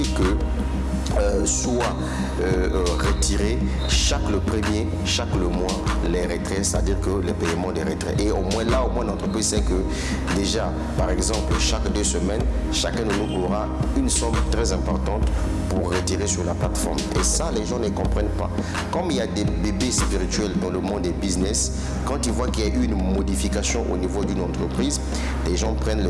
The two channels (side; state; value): both; identical; correlation 1.00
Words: que soit retirer chaque le premier, chaque le mois les retraits, c'est-à-dire que les paiements des retraits. Et au moins là, l'entreprise sait que déjà, par exemple, chaque 2 semaines, chacun de nous aura une somme très importante pour retirer sur la plateforme. Et ça, les gens ne comprennent pas. Comme il y a des bébés spirituels dans le monde des business, quand ils voient qu'il y a eu une modification au niveau d'une entreprise, les gens prennent